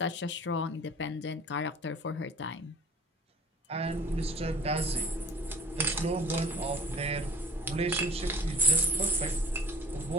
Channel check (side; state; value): both; normal; correlation 0.45